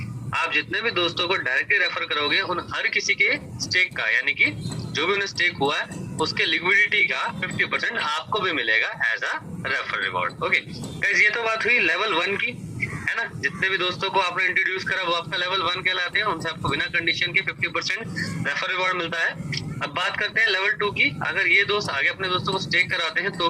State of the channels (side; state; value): both; identical; correlation 1.00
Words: आप जितने भी दोस्तों को डायरेक्टली रेफर करोगे उन हर किसी के स्टेक का, यानी कि जो भी उन्हें स्टेक हुआ है उसके लिक्विडिटी का 50% आपको भी मिलेगा as a refer reward. Okay guys, ये तो बात हुई लेवल 1 की, है ना। जितने भी दोस्तों को आपने इंट्रोड्यूस करा वो आपका लेवल 1 कहलाते हैं, उनसे आपको बिना कंडीशन के 50% रेफर रिवॉर्ड मिलता है। अब बात करते हैं लेवल 2 की। अगर ये दोस्त आगे अपने दोस्तों को स्टेक कराते हैं तो